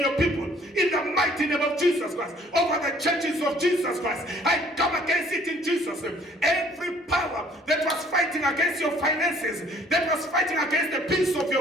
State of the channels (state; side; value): normal; both; correlation 0.58